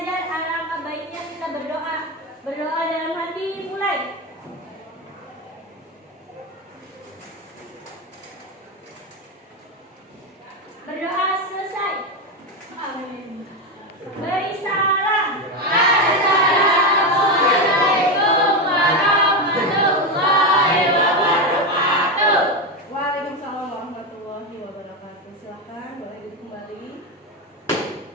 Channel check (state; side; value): normal; both; correlation 0.13